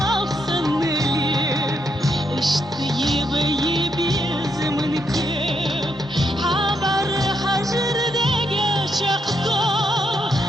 خصني اشتي غيب يا زمن كيف حبر حجر دقا شقطة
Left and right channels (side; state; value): both; normal; correlation 0.78